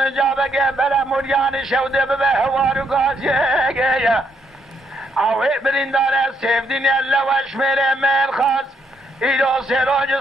جابگه بلا موریان شوده به هوارو غازیگه اوه برینداره سیفدین اللوش میره مرخاص ایرو سراج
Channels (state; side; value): normal; both; correlation 0.74